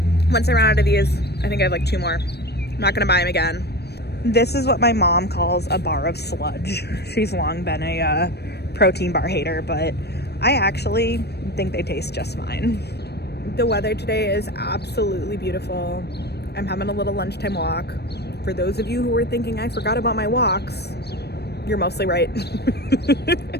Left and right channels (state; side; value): late; right; 0.47 ms